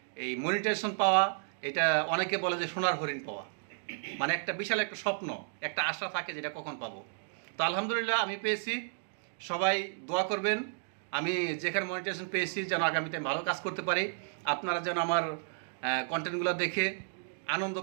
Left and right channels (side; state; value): left; silent; digital silence